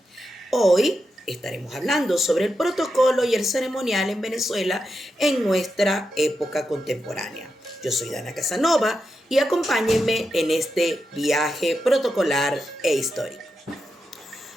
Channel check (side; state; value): both; normal; correlation 0.87